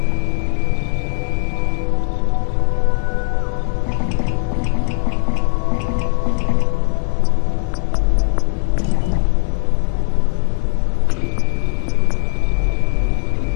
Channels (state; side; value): silent; right; digital silence